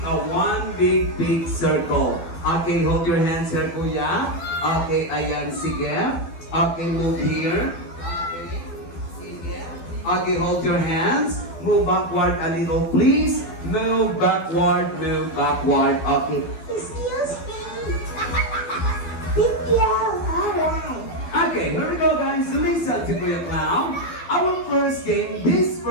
a one big circle. Okay, hold your hands here, kuya. Okay, ayan, sige. Okay, move here. Okay, sige. Okay, hold your hands. Move backward a little, please. Move backward. Okay. Excuse me. Thank you. Alright. Okay, here we go, guys. Listen to Kuya Clown. Our first game, this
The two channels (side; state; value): right; late; 12 ms